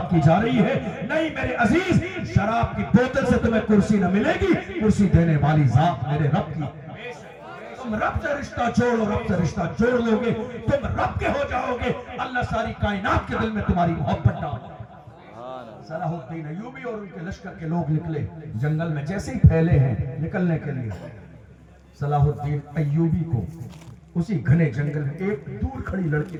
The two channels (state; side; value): identical; both; correlation 1.00